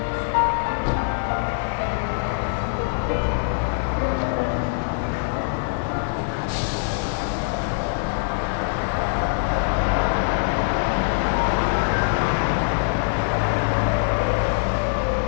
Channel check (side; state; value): right; silent; digital silence